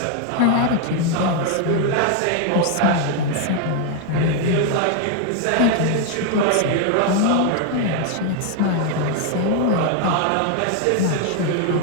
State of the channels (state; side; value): different; both; correlation 0.01